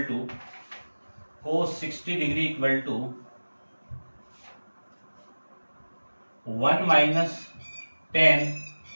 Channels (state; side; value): inverted; both; correlation -1.00